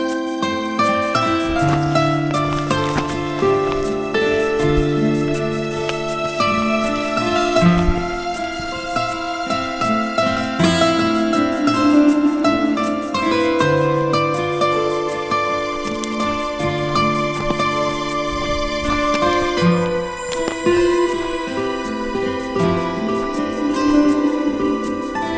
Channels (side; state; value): both; identical; correlation 1.00